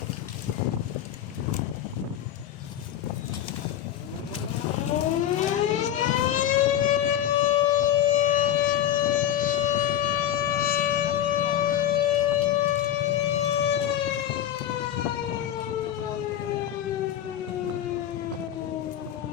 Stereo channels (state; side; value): quieter; right; 11.1 dB